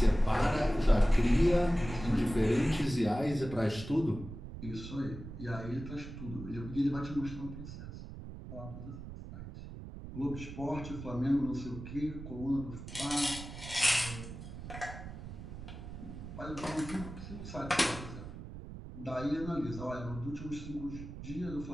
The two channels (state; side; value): noise; right; rumble, 11 dB below the sound